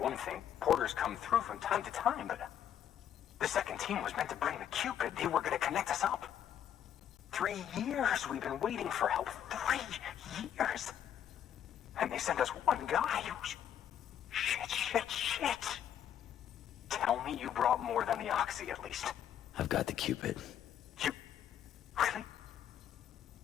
thing. Porters come through from time to time, but... The second team was meant to bring the Cupid. They were gonna connect us up. 3 years we've been waiting for help. 3 years! And they sent us one guy who's... Shit. Tell me you brought more than the Oxy, at least. I've got the Cupid. You... Really?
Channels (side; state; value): right; quieter; 9.8 dB